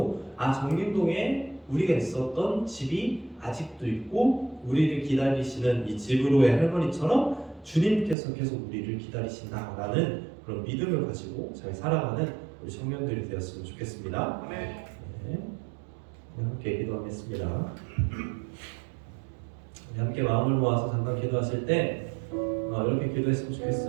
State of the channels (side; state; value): left; drops out; at 8.2 s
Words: 정림동에 우리가 있었던 집이 아직도 있고 우리를 기다리시는 이 집으로의 할머니처럼 주님께서 계속 우리를 기다리신다라는 그런 믿음을 가지고 잘 살아가는 우리 청년들이 되었으면 좋겠습니다. 네. 함께 기도하겠습니다. 함께 마음을 모아서 잠깐 기도하실 때 이렇게 기도했으면